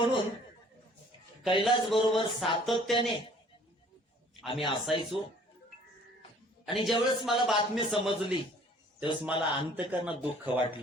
कैलास बरोबर सातत्याने आम्ही असायचो. आणि ज्यावेळेस मला बातमी समजली त्यावेळेस मला अंतकरणात दुःख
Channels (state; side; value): normal; both; correlation 0.55